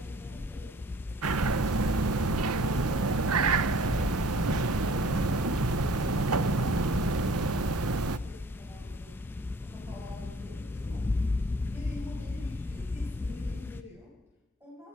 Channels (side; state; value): both; normal; correlation 0.53